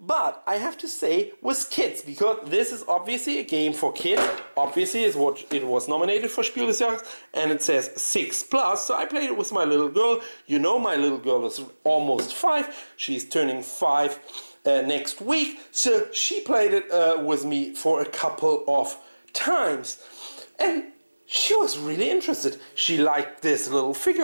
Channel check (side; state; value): both; inverted; correlation -1.00